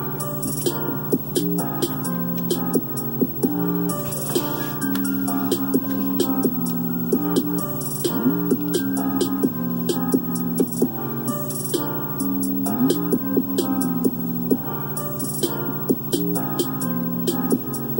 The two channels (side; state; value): both; identical; correlation 1.00